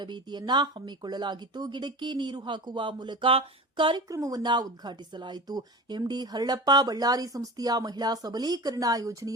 ಹಮ್ಮಿಕೊಳ್ಳಲಾಗಿತ್ತು. ಗಿಡಕ್ಕೆ ನೀರು ಹಾಕುವ ಮೂಲಕ ಕಾರ್ಯಕ್ರಮವನ್ನ ಉದ್ಘಾಟಿಸಲಾಯಿತು. ಎಂಡಿ ಹರಳಪ್ಪ ಬಳ್ಳಾರಿ ಸಂಸ್ಥೆಯ ಮಹಿಳಾ ಸಬಲೀಕರಣ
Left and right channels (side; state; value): both; normal; correlation 0.31